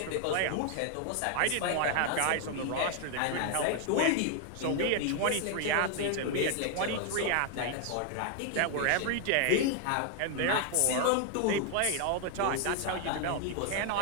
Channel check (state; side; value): different; both; correlation 0.00